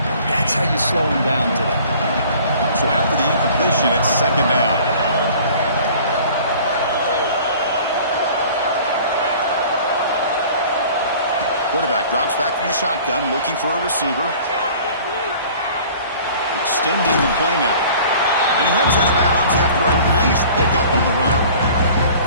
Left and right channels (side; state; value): both; inverted; correlation -0.48